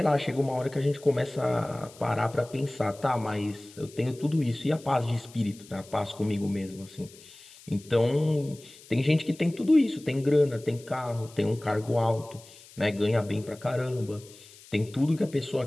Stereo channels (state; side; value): noise; left; hiss, 22 dB below the sound